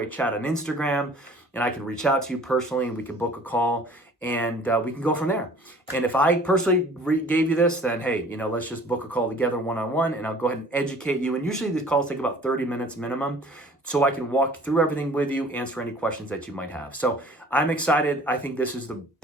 chat on Instagram, and I can reach out to you personally and we can book a call, and we can go from there. And if I personally gave you this, then hey, let's just book a call together one-on-one, and I'll go ahead and educate you. And usually these calls take about 30 minutes minimum, so I can walk through everything with you, answer any questions that you might have. So I'm excited. I think this is the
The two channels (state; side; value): normal; both; correlation 0.50